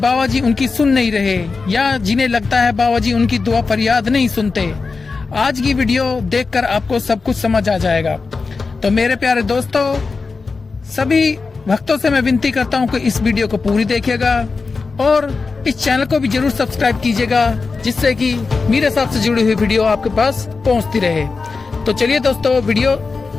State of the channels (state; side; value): quieter; right; 4.3 dB